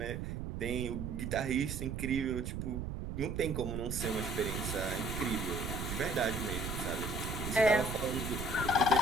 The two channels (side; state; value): right; noise; rumble, 4 dB below the sound